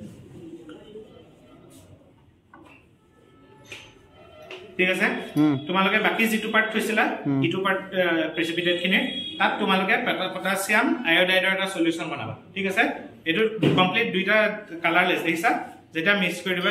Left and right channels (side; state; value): both; identical; correlation 1.00